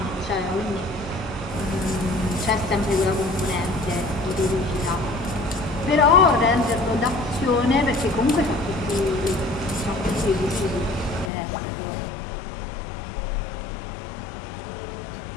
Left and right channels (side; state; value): right; drops out; at 11.3 s